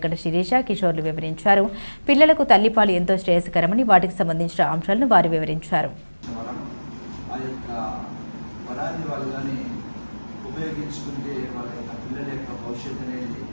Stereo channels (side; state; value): both; inverted; correlation -1.00